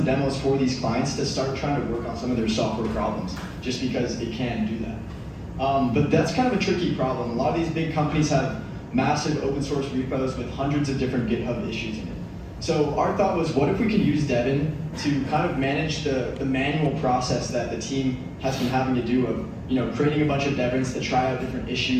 demos for these clients to start trying to work on some of their software problems, just because it can do that. But that's kind of a tricky problem. A lot of these big companies have massive open source repos with hundreds of different GitHub issues in it. So our thought was, what if we could use Devin to kind of manage the manual process that the team has been having to do of creating a bunch of Devins to try out different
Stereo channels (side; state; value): both; identical; correlation 1.00